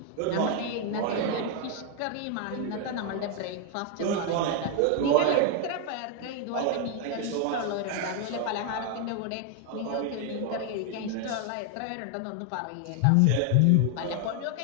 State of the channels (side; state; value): both; different; correlation 0.00